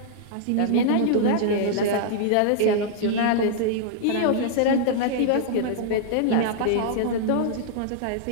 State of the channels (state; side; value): different; both; correlation -0.01